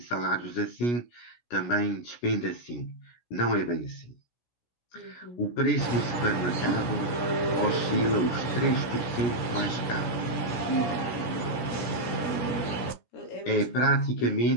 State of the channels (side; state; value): right; late; 17 ms